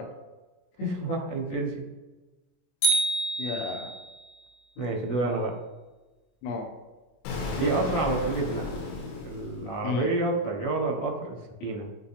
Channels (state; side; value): late; right; 25 ms